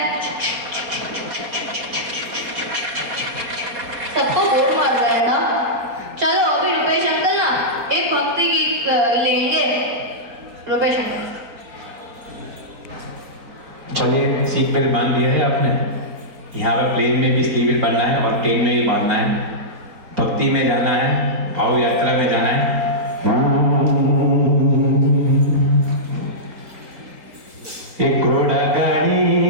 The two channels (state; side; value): late; left; 4.2 ms